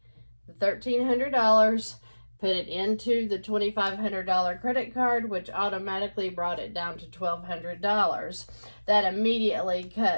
the $1,300, put it into the $2,500 credit card, which automatically brought it down to $1,200. That immediately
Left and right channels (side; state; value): both; inverted; correlation -1.00